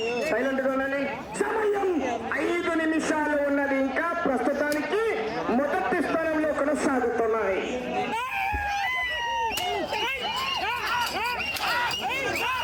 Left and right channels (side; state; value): both; identical; correlation 1.00